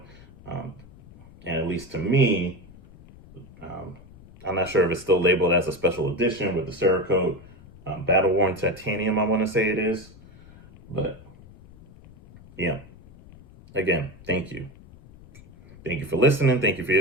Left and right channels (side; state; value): left; noise; rumble, 22 dB below the sound